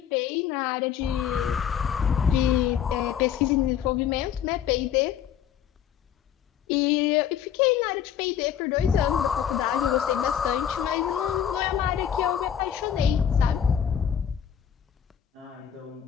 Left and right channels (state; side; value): quieter; right; 9.1 dB